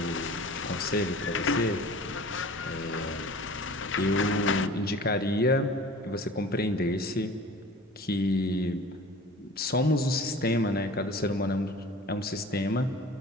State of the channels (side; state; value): both; normal; correlation 0.42